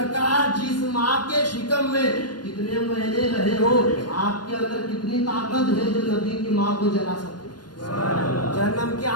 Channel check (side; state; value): right; late; 0.70 ms